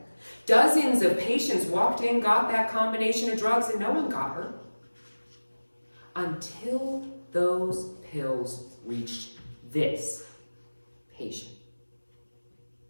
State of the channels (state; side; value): inverted; both; correlation -1.00